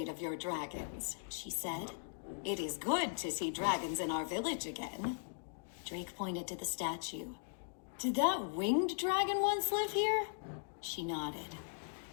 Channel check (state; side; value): silent; right; digital silence